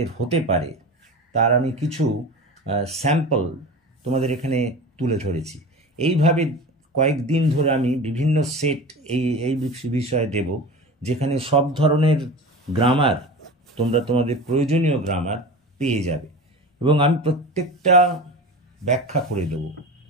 হতে পারে তার আমি কিছু স্যাম্পল তোমাদের এখানে তুলে ধরেছি। এইভাবে কয়েকদিন ধরে আমি বিভিন্ন সেট এই বিষয়ে দেব, যেখানে সব ধরনের গ্রামার তোমরা তোমাদের প্রয়োজনীয় গ্রামার পেয়ে যাবে, এবং আমি প্রত্যেকটা ব্যাখ্যা করে দেব।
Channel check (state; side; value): normal; both; correlation 0.31